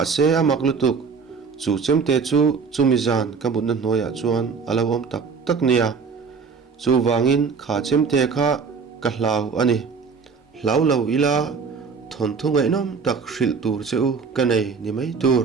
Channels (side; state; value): left; quieter; 5.4 dB